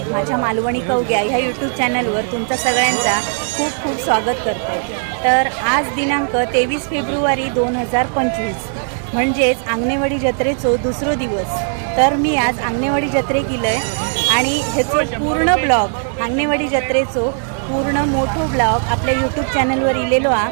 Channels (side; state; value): left; silent; 59 dB below the other